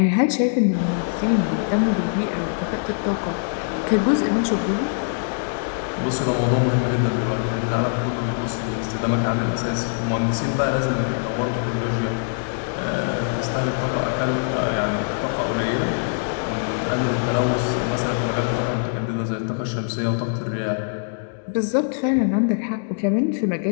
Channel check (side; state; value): right; silent; digital silence